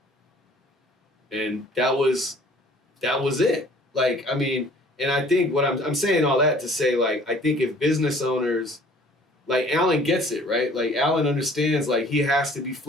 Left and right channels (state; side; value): normal; both; correlation 0.53